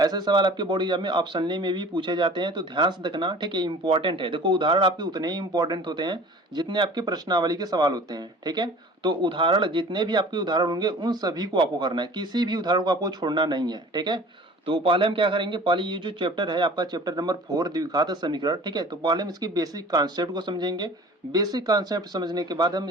सवाल आपके बोर्ड एग्जाम में ऑप्शनली में भी पूछे जाते हैं, तो ध्यान से देखना। ठीक है, इंपॉर्टेंट है। देखो उदाहरण आपके उतने ही इंपॉर्टेंट होते हैं जितने आपके प्रश्नावली के सवाल होते हैं। ठीक है, तो उदाहरण जितने भी आपके उदाहरण होंगे उन सभी को आपको करना है, किसी भी उदाहरण को आपको छोड़ना नहीं है। ठीक है, तो पहले हम क्या करेंगे, पहले ये जो चैप्टर है आपका चैप्टर नंबर 4 द्विघात समीकरण, ठीक है, तो पहले हम इसकी बेसिक कॉन्सेप्ट को समझेंगे। बेसिक कॉन्सेप्ट समझने के बाद हम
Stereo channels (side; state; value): both; normal; correlation 0.44